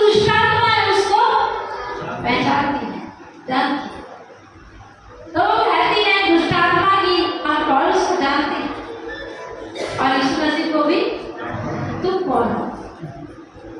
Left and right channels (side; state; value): both; identical; correlation 1.00